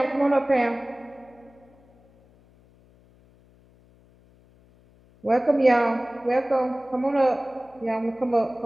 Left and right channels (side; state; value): left; noise; hum, 29 dB below the sound